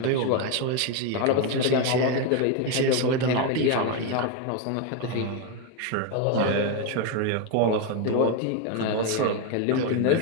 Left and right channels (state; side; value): different; both; correlation 0.02